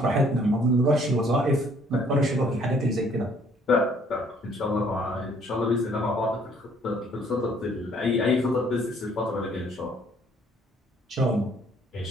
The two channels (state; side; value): normal; both; correlation 0.61